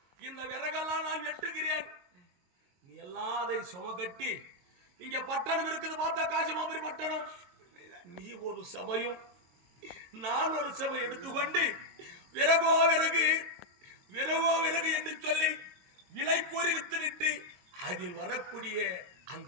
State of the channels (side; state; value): left; late; 22 ms